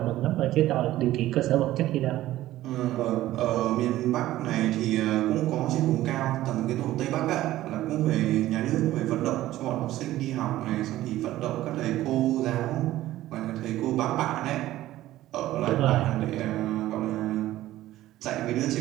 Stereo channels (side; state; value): left; quieter; 15.0 dB